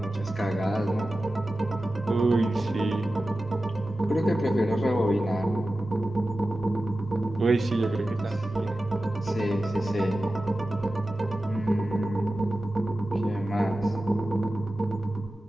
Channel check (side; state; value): both; normal; correlation 0.94